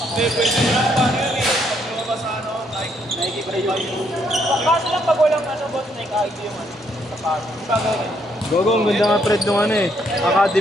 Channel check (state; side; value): normal; both; correlation 0.72